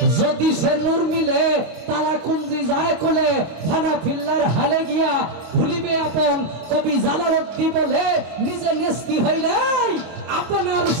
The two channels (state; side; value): late; left; 25 ms